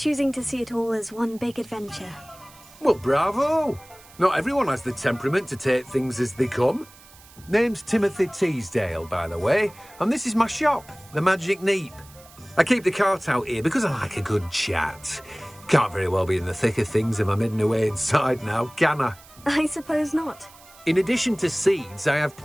to see it all as one big adventure. Well, bravo. Not everyone has the temperament to take things as they come. Name's Timothy Teasdale, by the way, and this is my shop, the Magic Neep. I keep the cart out here because I like a good chat. Can't very well be in the thick of things if I'm hidden away inside now, can I? I suppose not. In addition to seeds, I have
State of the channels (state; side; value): noise; right; hiss, 23 dB below the sound